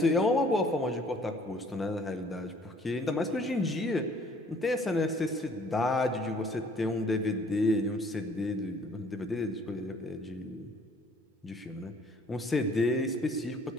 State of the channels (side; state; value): both; normal; correlation 0.57